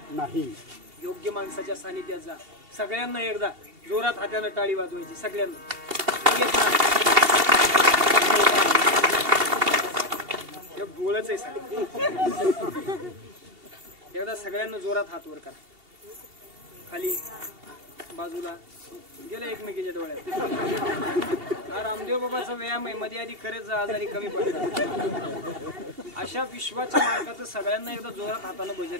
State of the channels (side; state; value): left; late; 2.8 ms